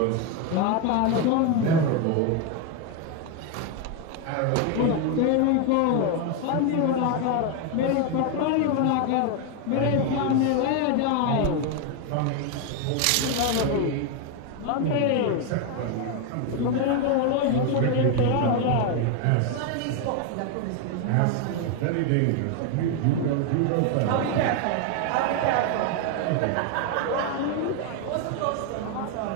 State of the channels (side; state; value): both; different; correlation 0.01